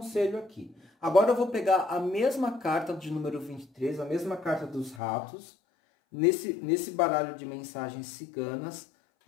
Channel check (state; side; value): drops out; right; at 5.0 s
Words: aqui. Agora eu vou pegar a mesma carta de número 23, a mesma carta dos ratos, nesse baralho de mensagens ciganas,